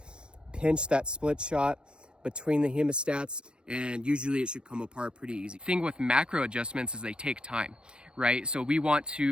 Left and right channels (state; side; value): late; left; 0.052 ms